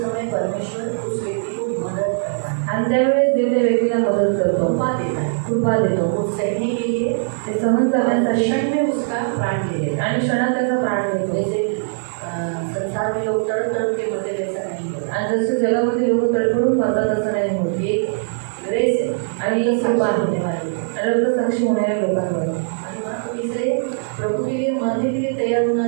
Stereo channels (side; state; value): left; silent; 65 dB below the other